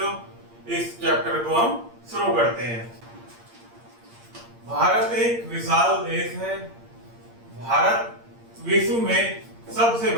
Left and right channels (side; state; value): left; late; 8.6 ms